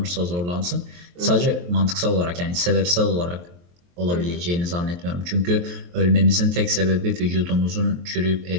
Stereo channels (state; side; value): late; left; 23 ms